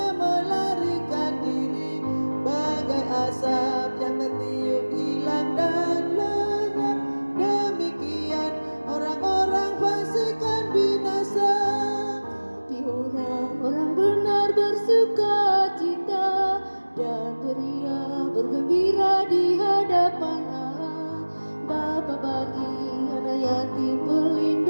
melarikan diri, bagai asap yang tertiup hilang dan lenyap. Demikian orang-orang fasik kan binasa, tapi orang-orang benar bersuka cita dan beria bergembira di hadapan Allah. Bapa bagi anak yatim,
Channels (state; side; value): inverted; both; correlation -1.00